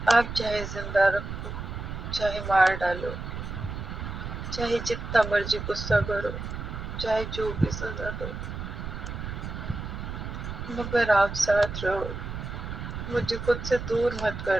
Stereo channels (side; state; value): right; noise; rumble, 7 dB below the sound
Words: आप चाहे जिंदा रखो, चाहे मार डालो, चाहे जितना मर्जी गुस्सा करो, चाहे जो भी सजा दो, मगर आप साथ रहो। मुझे खुद से दूर मत